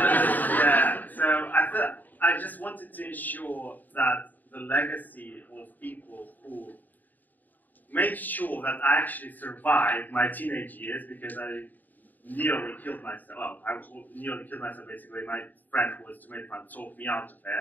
Yeah, so I just wanted to ensure that the legacy of people who made sure that I actually survived my teenage years, because I nearly killed myself. Well, I nearly killed myself basically. My friend who was tomato fan talked me out of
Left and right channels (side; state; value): right; late; 0.086 ms